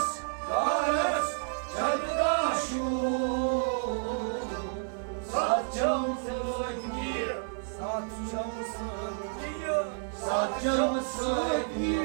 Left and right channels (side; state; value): left; silent; digital silence